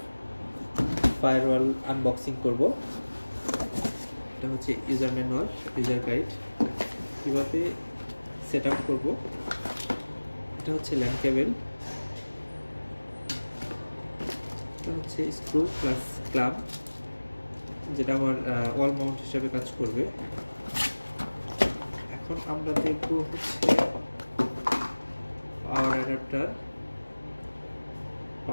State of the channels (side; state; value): both; inverted; correlation -1.00